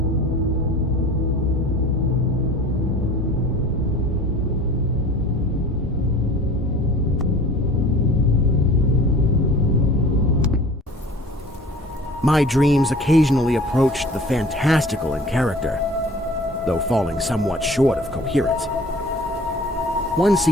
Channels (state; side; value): normal; both; correlation 0.45